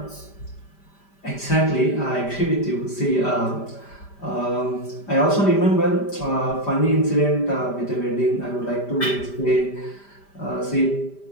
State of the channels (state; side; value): late; right; 5.1 ms